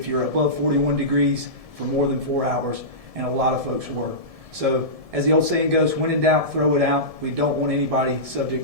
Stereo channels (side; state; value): left; late; 1.7 ms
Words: you're above 41 degrees for more than 4 hours, and a lot of folks were. So as the old saying goes, when in doubt, throw it out. We don't want anybody